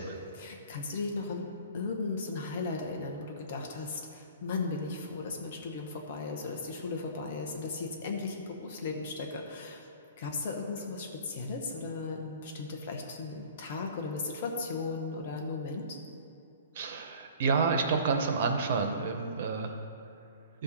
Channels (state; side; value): inverted; both; correlation -0.45